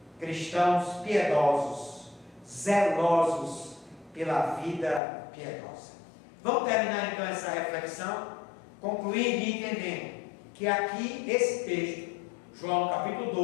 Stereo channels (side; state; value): right; drops out; at 5.0 s